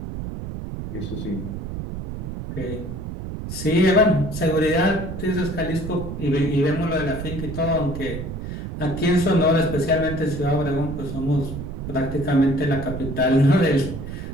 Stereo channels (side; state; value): right; noise; rumble, 7 dB below the sound